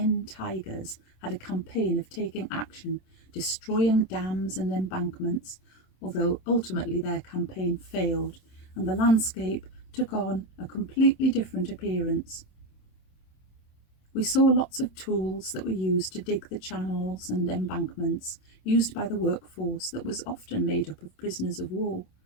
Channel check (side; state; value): right; late; 27 ms